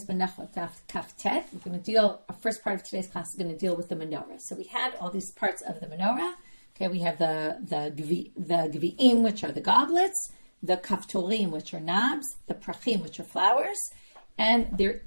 Menachot, Kaftet. We're going to deal, our first part of today's class is going to deal with the Menora. So we had all these parts of the Menora. Okay, we have the Gvi'im, which are the goblets, the Kaftorim, which are knobs, the Prachim, which are flowers, and they're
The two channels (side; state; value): both; inverted; correlation -1.00